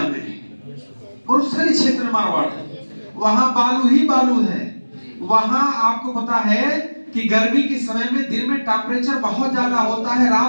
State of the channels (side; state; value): both; inverted; correlation -1.00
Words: में है, मरुस्थली क्षेत्र में मारवाड़ है, वहां बालू ही बालू है। वहां आपको पता है कि गर्मी के समय में दिन में टेम्परेचर बहुत ज्यादा होता है,